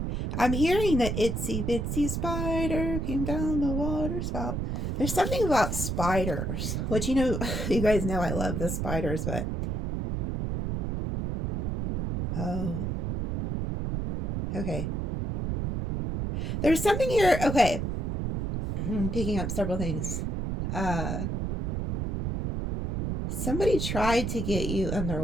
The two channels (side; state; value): right; noise; rumble, 1 dB below the sound